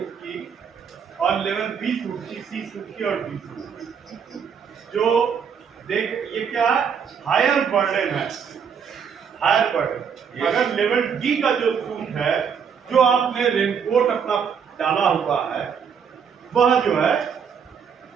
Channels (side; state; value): left; quieter; 7.0 dB